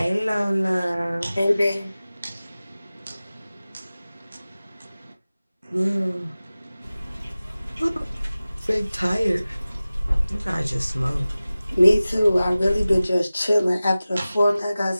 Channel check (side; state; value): both; inverted; correlation -0.97